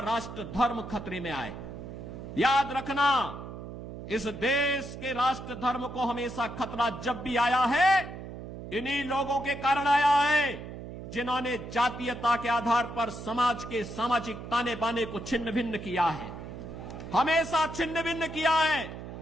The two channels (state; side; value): noise; right; hum, 10 dB below the sound